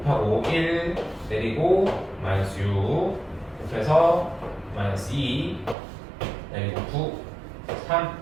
1 내리고 마이너스 6 곱해서 마이너스 2 내리고 9 3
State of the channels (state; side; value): drops out; left; at 5.8 s